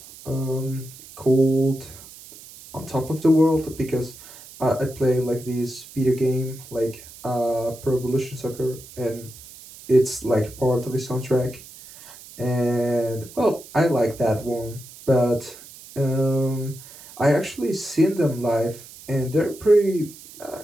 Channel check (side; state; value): right; noise; hiss, 18 dB below the sound